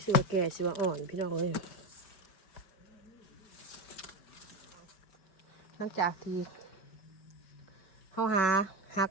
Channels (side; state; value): right; late; 5.3 ms